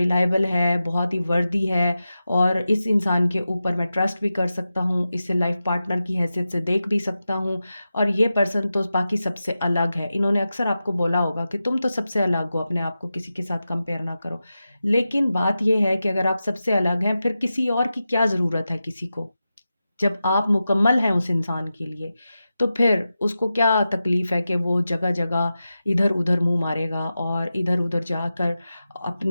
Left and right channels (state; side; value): inverted; both; correlation -0.92